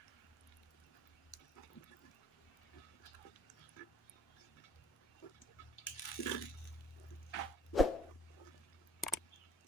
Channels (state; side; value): normal; both; correlation 0.58